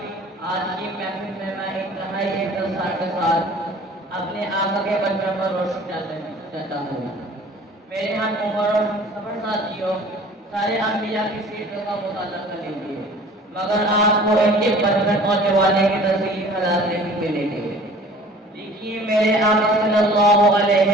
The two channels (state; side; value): normal; both; correlation 0.48